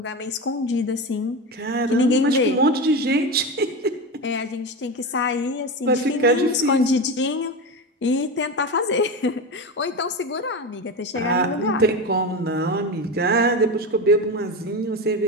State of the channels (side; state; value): both; normal; correlation 0.21